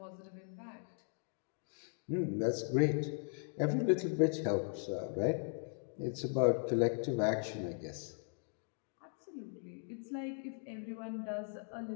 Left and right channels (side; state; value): right; silent; 52 dB below the other